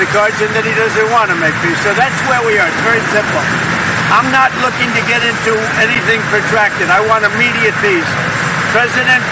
cards, and then he doesn't want to make peace. So that's where we are. It's very simple. I'm not looking to get into anything protracted. I want immediate peace. President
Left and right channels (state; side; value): identical; both; correlation 1.00